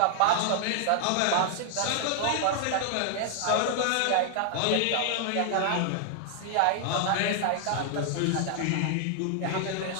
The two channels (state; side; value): different; both; correlation 0.00